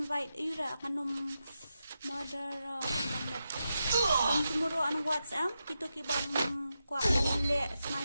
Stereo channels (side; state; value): both; inverted; correlation -0.88